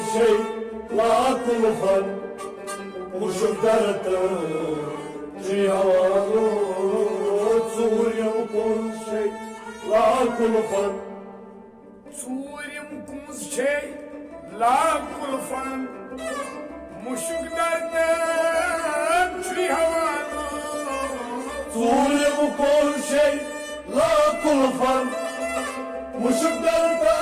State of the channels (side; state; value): both; identical; correlation 1.00